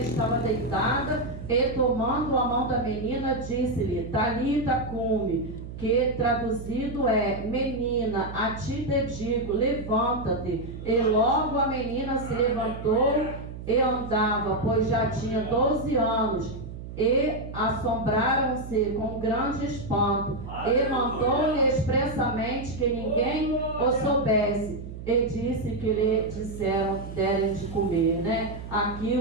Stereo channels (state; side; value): noise; right; hum, 11 dB below the sound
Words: deitada, e tomando a mão da menina, disse-lhe, Talita cumi, que traduzido é, menina, a ti te digo, levanta-te. E logo a menina se levantou e andava, pois já tinha 12 anos. E assombraram-se com grande espanto, e mandou-lhe expressamente que ninguém o soubesse, e disse que lhe disseram, derem de comer, né? Aqui